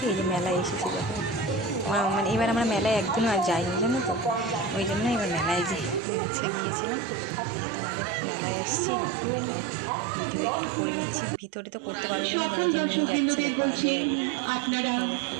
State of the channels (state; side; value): drops out; left; at 6.0 s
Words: এই যে মেলায় এসেছি। দেখো মানে এবার আমরা মেলায় একদিনও আর যাইনি জানো তো, ওই জন্য এবার মেলায় আজকে গিয়েছিলাম। এই যে তোমাদের মেলায় এসেছি, মেলায় ভিডিও একটু করে নিচ্ছি। ভিতরে তো করতে পারবো না, যে নিয়ে যাচ্ছে দেখো আগে আগে, দেখো